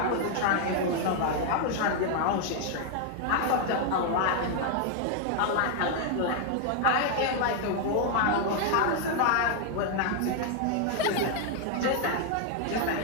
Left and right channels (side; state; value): both; different; correlation 0.00